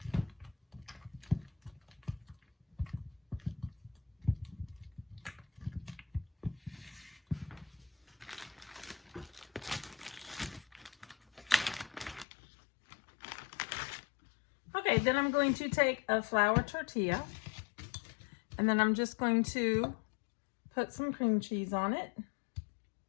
Okay, then I'm going to take a flour tortilla, and then I'm just going to put some cream cheese on it.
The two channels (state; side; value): drops out; right; at 12.2 s